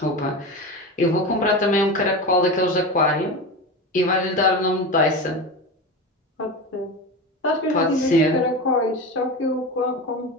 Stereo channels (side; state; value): both; normal; correlation 0.24